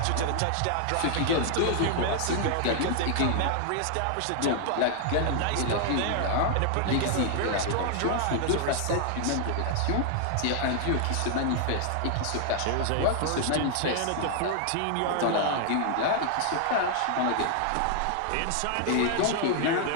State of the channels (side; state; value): both; different; correlation 0.00